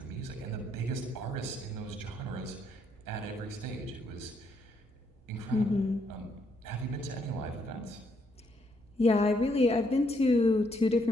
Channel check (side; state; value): both; normal; correlation 0.74